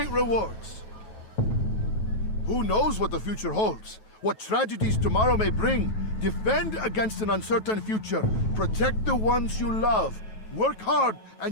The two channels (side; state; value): right; late; 9.2 ms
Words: rewards. Who knows what the future holds? What tragedies tomorrow may bring? Defend against an uncertain future. Protect the ones you love. Work hard,